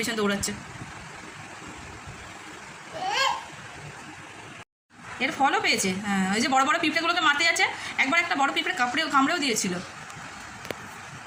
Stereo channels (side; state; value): both; identical; correlation 1.00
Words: পিছন দৌড়াচ্ছে। এর ফলও পেয়েছে। হ্যাঁ, ওই যে বড় বড় পিঁপড়েগুলোকে মারতে যাচ্ছে। একবার একটা বড় পিঁপড়ে কামড়েও দিয়েছিল।